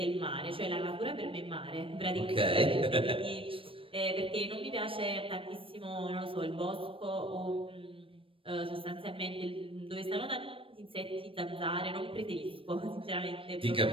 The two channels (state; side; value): late; left; 0.26 ms